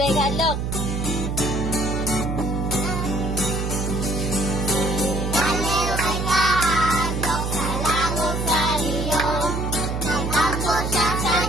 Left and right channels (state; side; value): noise; right; hum, 2 dB below the sound